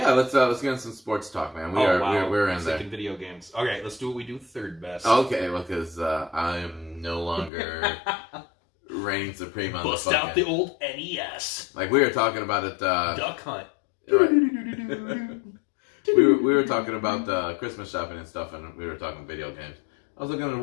Let's get into some sports talk, man. We're in there. Second video games. Okay. Let's do what we do third best. Okay. Well, because I am no longer reigning supreme on Bust the out the old NES. Like we were talking about it. Duck Hunt. Right. we were talking about Christmas shopping and stuff, and we were talking video games. I was looking at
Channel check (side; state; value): right; drops out; at 7.5 s